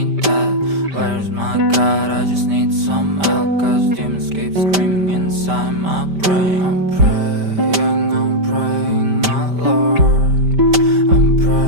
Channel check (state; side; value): late; left; 5.1 ms